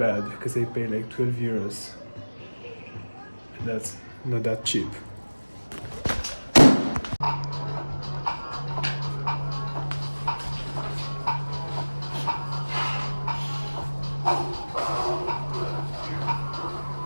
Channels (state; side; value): inverted; both; correlation -1.00